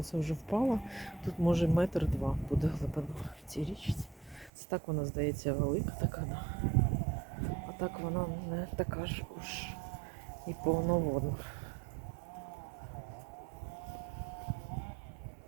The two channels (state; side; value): drops out; left; at 4.5 s